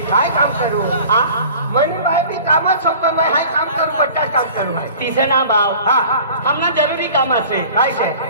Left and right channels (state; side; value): inverted; both; correlation -0.44